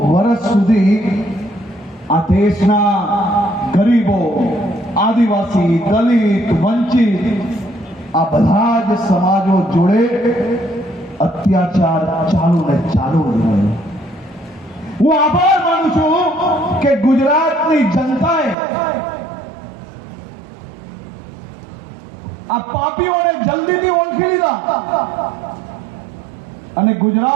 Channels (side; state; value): left; drops out; at 18.6 s